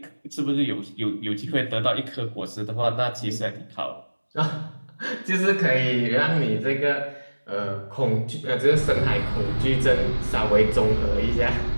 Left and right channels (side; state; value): both; inverted; correlation -1.00